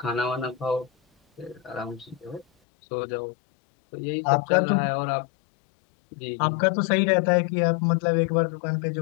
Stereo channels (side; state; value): right; drops out; at 2.5 s